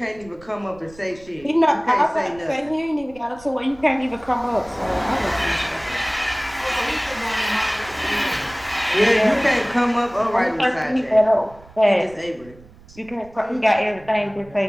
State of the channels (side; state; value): right; noise; rumble, 23 dB below the sound